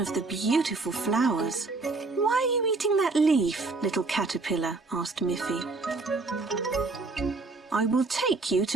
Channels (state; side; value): quieter; left; 3.7 dB